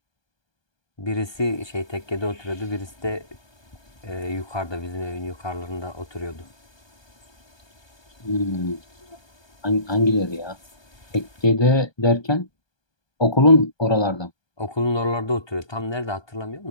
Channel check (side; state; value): right; late; 1.2 ms